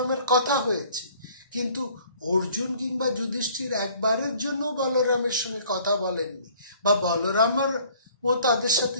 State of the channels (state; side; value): inverted; both; correlation -0.55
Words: কথা হয়েছে, কিন্তু অর্জুন কিংবা যুধিষ্ঠির একবারের জন্য বলরামের সঙ্গে কথা বলেননি, বা বলরামের ও তাদের সাথে